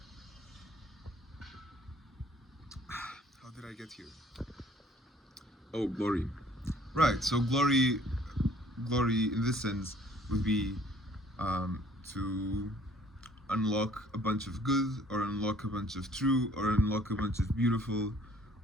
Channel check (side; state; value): both; normal; correlation 0.57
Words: How did I get here? Oh, glory. Right, so glory in this sense would be to unlock a bunch of good, or unlock a bunch of true, or unlock a bunch of beautiful,